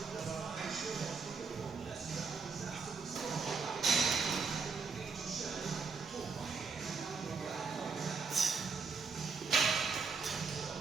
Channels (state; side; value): quieter; left; 5.0 dB